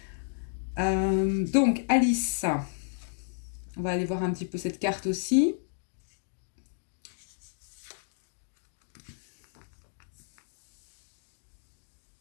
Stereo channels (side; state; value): right; silent; digital silence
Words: Donc Alice, on va aller voir un petit peu cette carte aussi.